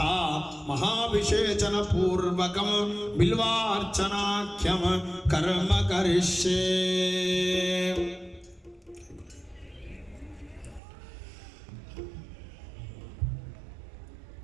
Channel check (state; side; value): drops out; left; at 10.8 s